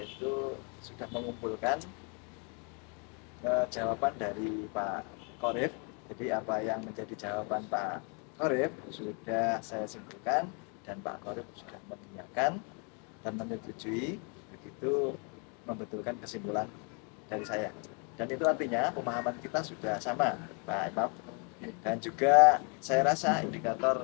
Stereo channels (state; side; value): quieter; right; 35.8 dB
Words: sudah mengumpulkan jawaban dari Pak Qorib. Jadi apa yang menjadi jawaban Pak Qorib sudah saya simpulkan, dan Pak Qorib sudah mengiyakan dan menyetujui, begitu membetulkan kesimpulan dari saya. Dan itu artinya pemahaman kita sudah sama Pak Imam. Dan juga saya rasa